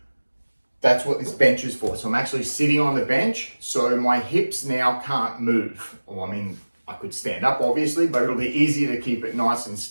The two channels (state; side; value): inverted; both; correlation -1.00